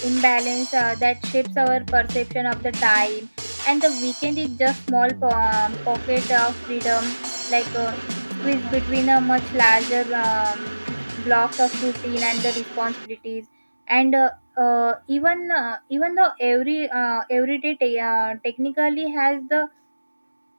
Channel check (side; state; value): both; inverted; correlation -1.00